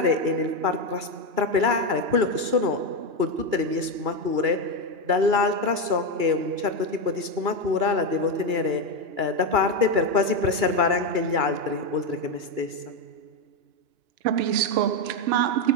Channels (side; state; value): left; late; 2.3 ms